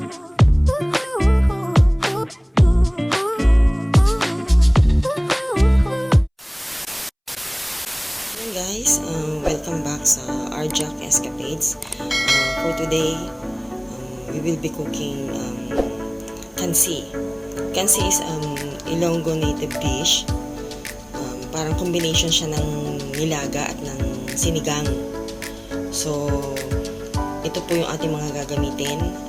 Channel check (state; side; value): identical; both; correlation 1.00